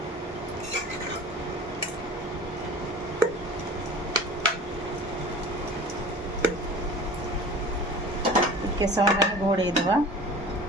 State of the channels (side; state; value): both; normal; correlation 0.40